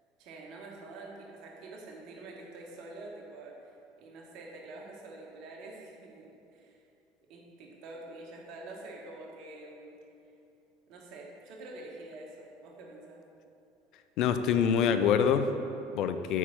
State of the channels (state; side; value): quieter; right; 6.3 dB